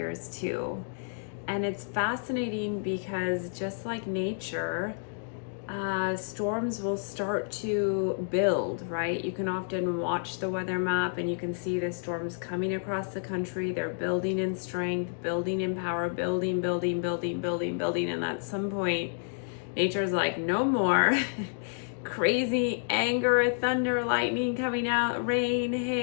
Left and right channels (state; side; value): silent; right; digital silence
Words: too. And it's fascinating because just like nature, storms will start to build, right? You can often watch the weather map and you can see the storms coming across the country. They're building in strength, building in power, building. And at some point, nature's like, no more. Crazy anger, thunder, lightning coming out, rain,